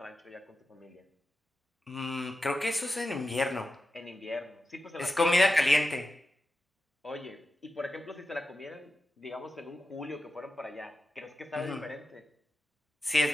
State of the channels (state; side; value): normal; both; correlation 0.92